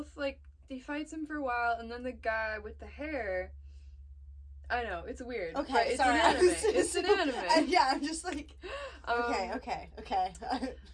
like, he fights him for a while, and then the guy with the hair, I know, it's weird. Okay, it's sorry. an anime. It's an anime. Yeah, I'm just like, okay.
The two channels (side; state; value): both; identical; correlation 1.00